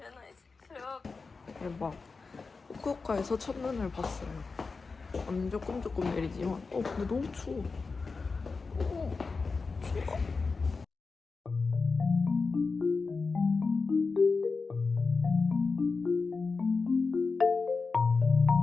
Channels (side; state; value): right; quieter; 4.4 dB